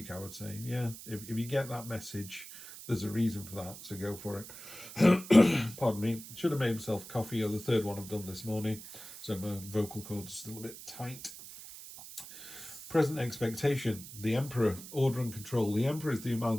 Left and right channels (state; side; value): noise; right; hiss, 14 dB below the sound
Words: I would say, yeah, if you get that message, there's a reason for that, so go for it. Pardon me. Should have made himself coffee, or the third one I've done this morning, so my vocal cords are still a bit tight. Present expectation. The Emperor, order and control. The Emperor is the